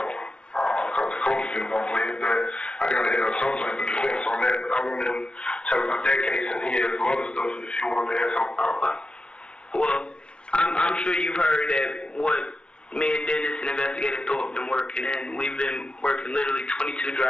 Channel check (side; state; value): right; late; 0.056 ms